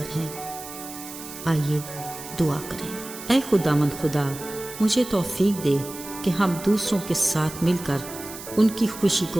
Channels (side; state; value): right; noise; hiss, 13 dB below the sound